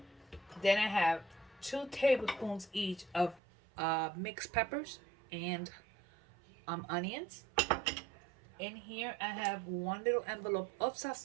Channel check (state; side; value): drops out; left; at 3.4 s